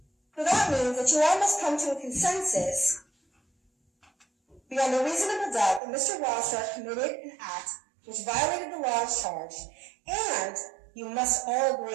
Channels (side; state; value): left; drops out; at 5.8 s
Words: that means that you all must come to a consensus beyond a reasonable doubt that Mr. Wildstar committed an act which violated the laws charged, and you must all